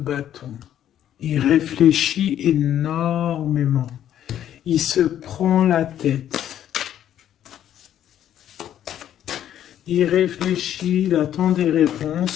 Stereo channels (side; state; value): right; quieter; 10.9 dB